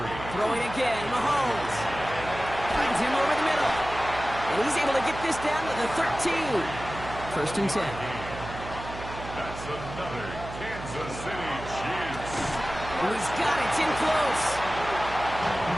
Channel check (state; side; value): noise; right; hum, 11 dB below the sound